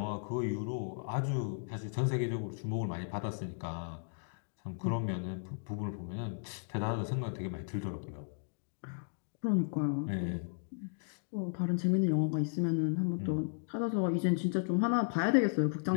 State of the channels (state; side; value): silent; right; digital silence